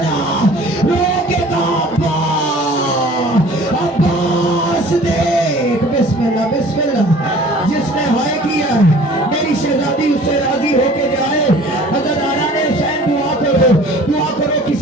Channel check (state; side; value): normal; both; correlation 0.48